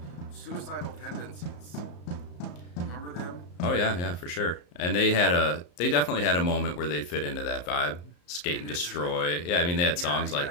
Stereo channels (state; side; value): late; right; 34 ms